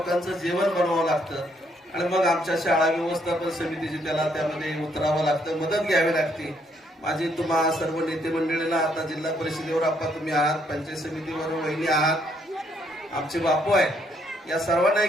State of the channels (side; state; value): both; normal; correlation 0.71